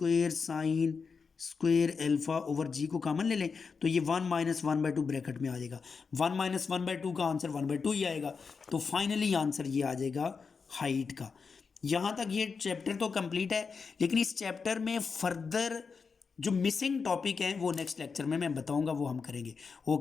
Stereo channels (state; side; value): quieter; right; 5.3 dB